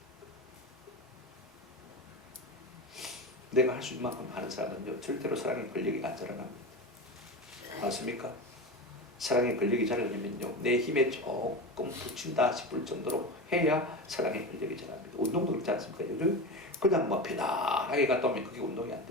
내가 할 수 있는 만큼 하는 사람은요 절대로 사랑의 권력이 안 자라납니다. 맞습니까? 사랑의 권력이 자라려면요 내 힘에 조금 붙인다 싶을 정도로 해야 사랑의 권력이 자랍니다. 운동도 그렇지 않습니까? 요즘 그냥 뭐 편안하게 갔다 오면 그게 운동이 안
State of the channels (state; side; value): normal; both; correlation 0.25